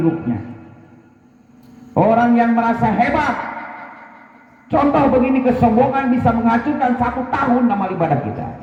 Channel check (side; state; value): both; identical; correlation 1.00